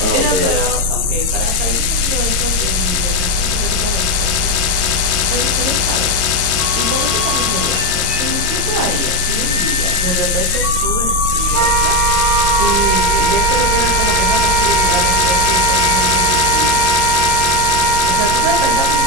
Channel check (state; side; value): late; left; 21 ms